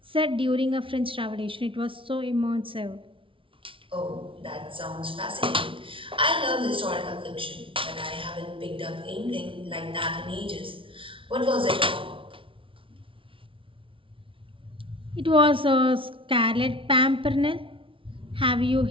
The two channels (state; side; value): late; left; 0.25 ms